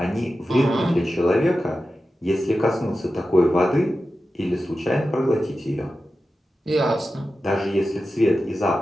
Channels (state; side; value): normal; both; correlation 0.92